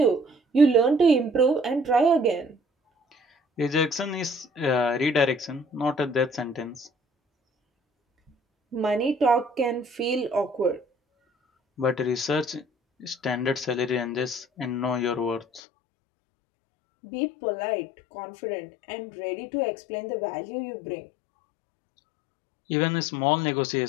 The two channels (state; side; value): drops out; right; at 15.6 s